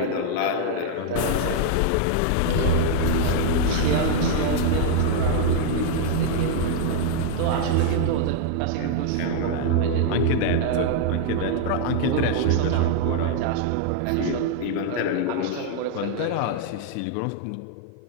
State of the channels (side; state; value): both; different; correlation 0.00